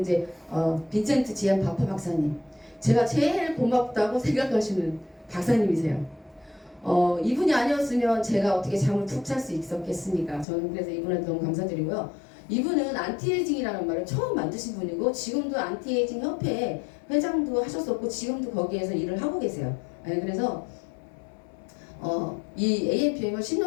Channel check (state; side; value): drops out; right; at 10.5 s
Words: 빈센트 지안 바파 박사님. 제가 제일 고맙다고 생각하시는 박사님이세요. 이분이 아니었으면 제가 어떻게 잠을 푹 잘 수 있었겠습니까? 저는 그래서 이분한테 너무 감사드리고요. 이분은 안티에이징이라는 말을 처음 만드신 분이고 지금도 안티에이징 협회 회장도 하셨었고 지금도 거기에서 일을 하고 계세요. 네, 그래서 이 AMPM을